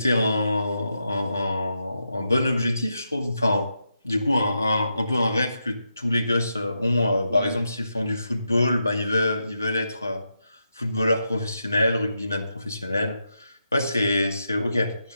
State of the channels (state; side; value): inverted; both; correlation -0.85